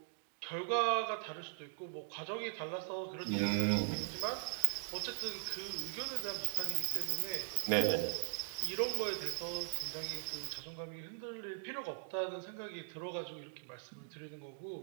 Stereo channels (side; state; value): left; silent; digital silence